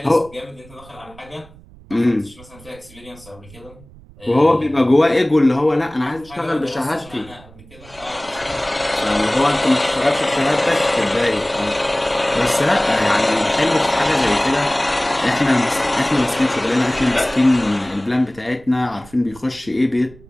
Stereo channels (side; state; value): right; noise; rumble, 23 dB below the sound